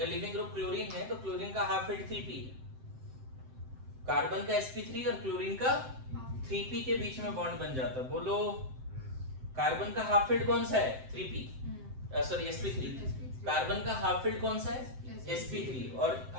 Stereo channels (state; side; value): late; left; 7.8 ms